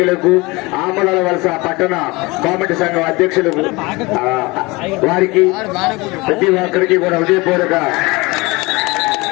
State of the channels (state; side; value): quieter; right; 23.8 dB